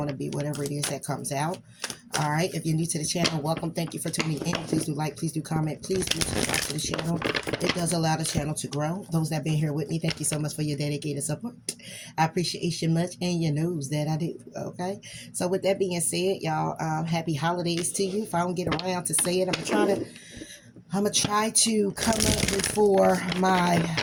to be whatever it is that comes out. All right. If you're new to the channel, welcome. Thank you for tuning in. Please do like, please do comment, please do subscribe to the channel. It does allow the channel to grow. Those that have been here with me, thank you so much for your dedicated support. I appreciate you much, and you knows that I do. Okay. So with that being said, y'all, happy holidays to you. If I don't get around to say it, I'm gonna try to come up before my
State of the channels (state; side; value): identical; both; correlation 1.00